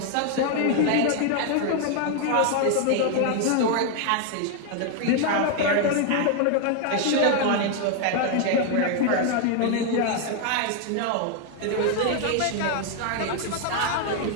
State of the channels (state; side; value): different; both; correlation 0.01